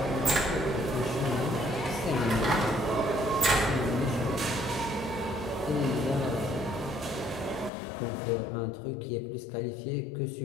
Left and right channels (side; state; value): right; drops out; at 7.7 s